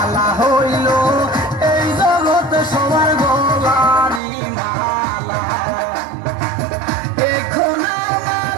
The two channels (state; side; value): drops out; left; at 4.2 s